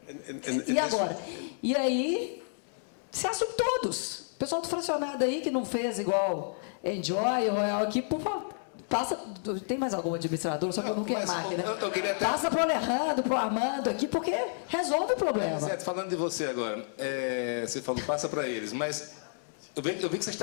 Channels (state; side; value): silent; right; digital silence